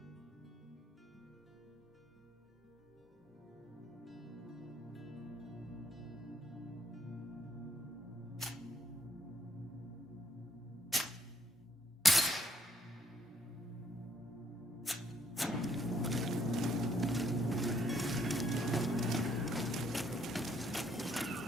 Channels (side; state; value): both; normal; correlation 0.70